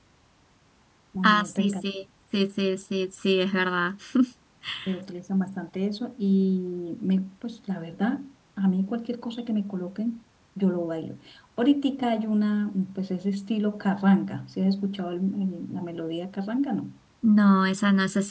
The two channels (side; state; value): both; identical; correlation 1.00